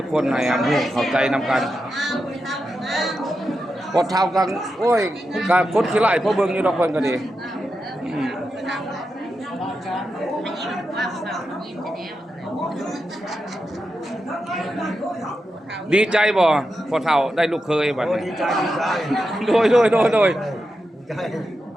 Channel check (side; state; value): both; normal; correlation 0.88